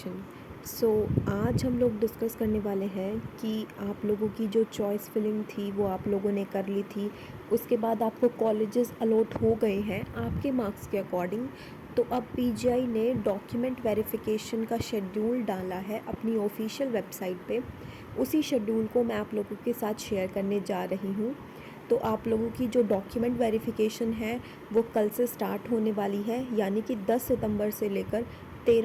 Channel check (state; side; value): identical; both; correlation 1.00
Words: आज हम लोग discuss करने वाले हैं कि आप लोगों की जो चॉइस फिलिंग थी वो आप लोगों ने कर ली थी। उसके बाद आपको कॉलेजेस अलॉट हो गए हैं आपके मार्क्स के अकॉर्डिंग। तो अब पीजीआई ने डॉक्यूमेंट वेरिफिकेशन का शेड्यूल डाला है अपनी ऑफिशियल वेबसाइट पे। उसी शेड्यूल को मैं आप लोगों के साथ शेयर करने जा रही हूँ। तो आप लोगों की जो डॉक्यूमेंट वेरिफिकेशन है वो कल से स्टार्ट होने वाली है, यानी कि 10 सितंबर से लेकर